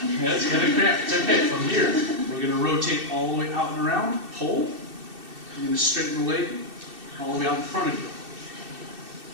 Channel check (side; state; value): left; late; 2.6 ms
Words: Yeah, it's going to cramp. It's okay. From here, we're going to rotate all the way out and around. Pull. You're going to straighten the leg all the way out in front of